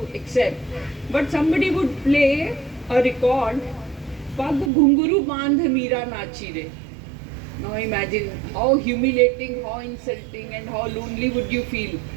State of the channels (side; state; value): left; drops out; at 4.7 s